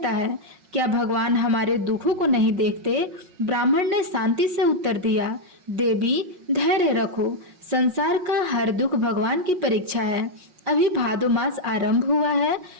है। क्या भगवान हमारे दुखों को नहीं देखते? ब्राह्मण ने शांति से उत्तर दिया, देवी, धैर्य रखो। संसार का हर दुख भगवान की परीक्षा है। अभी भादो मास आरंभ हुआ है।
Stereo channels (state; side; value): late; left; 5.5 ms